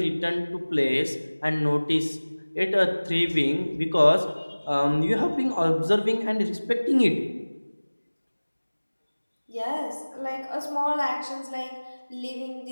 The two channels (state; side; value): inverted; both; correlation -1.00